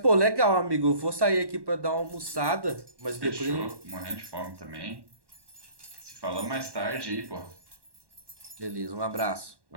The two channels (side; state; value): left; late; 1.1 ms